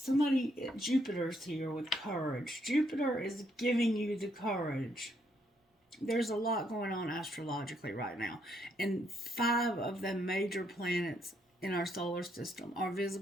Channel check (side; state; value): both; normal; correlation 0.74